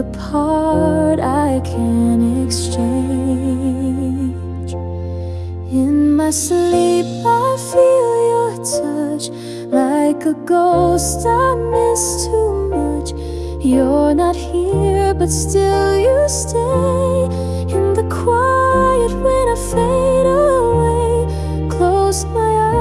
part I can't exchange. In my sleep I feel your touch, like a ghost I miss too much. You're not here but still you stay. In the quiet when I fade away, close my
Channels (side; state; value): both; identical; correlation 1.00